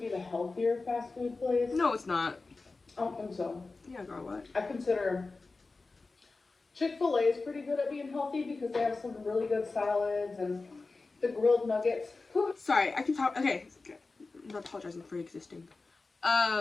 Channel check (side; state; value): right; quieter; 3.7 dB